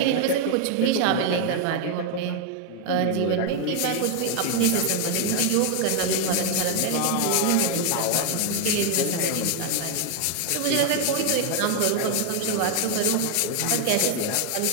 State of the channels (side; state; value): both; different; correlation 0.01